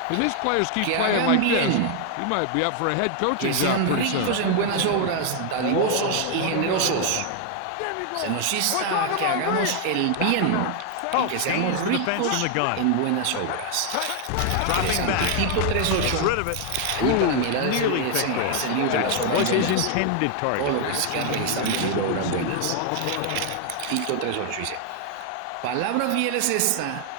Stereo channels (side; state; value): both; different; correlation 0.00